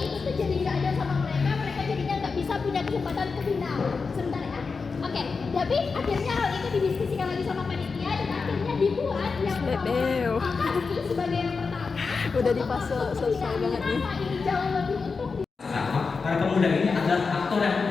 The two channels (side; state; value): right; quieter; 4.7 dB